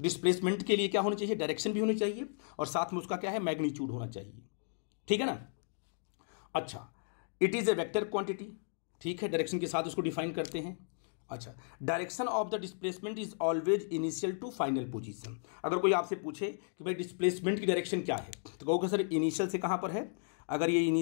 डिस्प्लेसमेंट के लिए क्या होना चाहिए? डायरेक्शन भी होनी चाहिए और साथ में उसका क्या है? मैग्नीट्यूड होना चाहिए। ठीक है ना। अच्छा, it is a vector quantity. ठीक है, डायरेक्शन के साथ उसको डिफाइन करते हैं। अच्छा, direction of the displacement is always initial to final position. अगर कोई आपसे पूछे कि भाई डिस्प्लेसमेंट की डायरेक्शन क्या है, तो कहोगे सर इनिशियल से कहाँ पर है? अगर ये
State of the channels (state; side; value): silent; right; digital silence